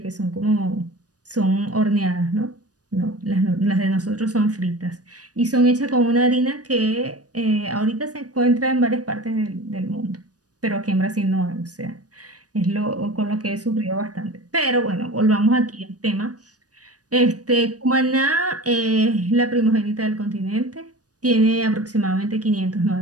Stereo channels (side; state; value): left; late; 0.68 ms